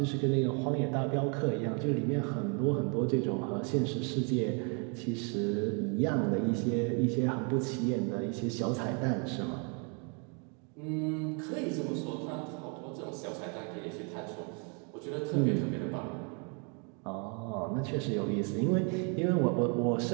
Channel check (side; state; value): left; quieter; 36.9 dB